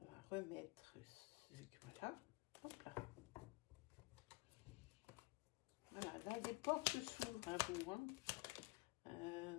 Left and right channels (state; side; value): quieter; right; 23.5 dB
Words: va remettre... Voilà, hop là. Voilà, là, des portes s'ouvrent à vous. Hein.